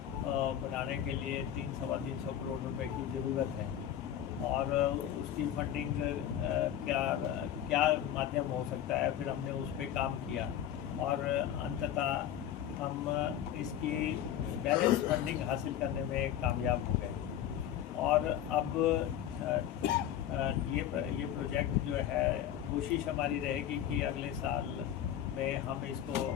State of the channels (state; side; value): quieter; right; 10.7 dB